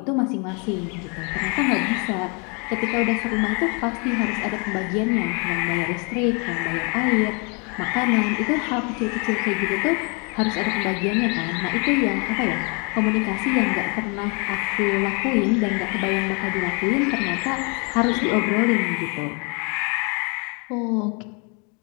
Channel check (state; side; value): quieter; right; 34.2 dB